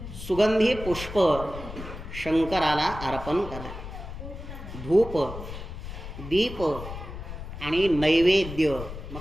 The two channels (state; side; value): noise; left; rumble, 10 dB below the sound